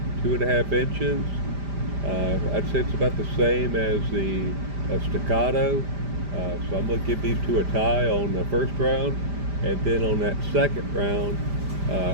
inches. I'd say it's about the same as the Staccato. So I'm going to give these two a tie on the first round, and then on that second round,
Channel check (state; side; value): late; left; 5.0 ms